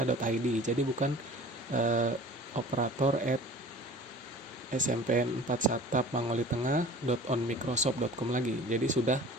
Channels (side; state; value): both; normal; correlation 0.43